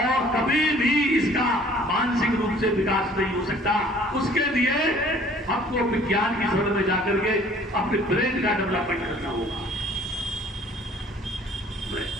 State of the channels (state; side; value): normal; both; correlation 0.54